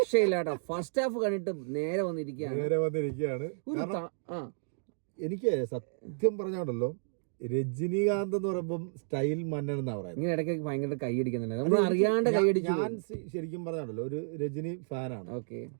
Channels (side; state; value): left; silent; digital silence